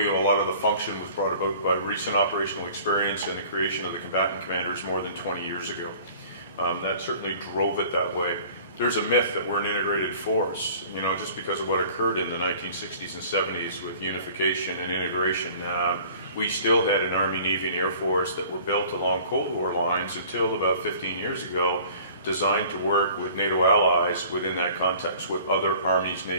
a lot of the function was brought about by recent operational experience and the creation of the combatant commanders more than 20 years ago. That certainly drove it that way. There's a myth that we're an integrated force, you know, just because of what occurred in the 1960s and 70s with unification and integration. We still had an Army, Navy, and Air Force that were built along Cold War lines until about 15 years ago, designed to work with NATO allies within that context with other armies,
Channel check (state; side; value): inverted; both; correlation -0.48